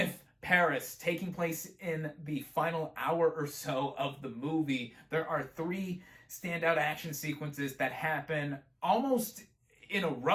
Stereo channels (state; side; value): identical; both; correlation 1.00